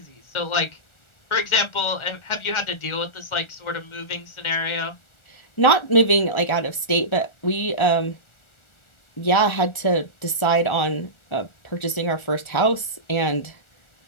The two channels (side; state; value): right; late; 1.4 ms